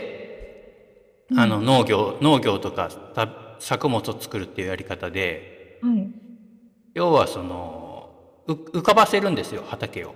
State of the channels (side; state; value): both; identical; correlation 1.00